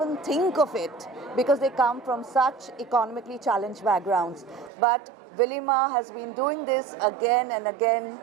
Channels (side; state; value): left; drops out; at 4.7 s